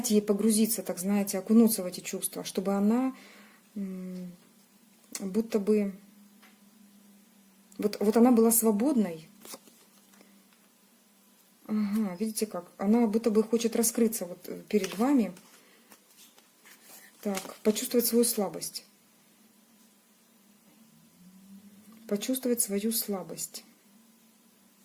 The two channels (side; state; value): both; identical; correlation 1.00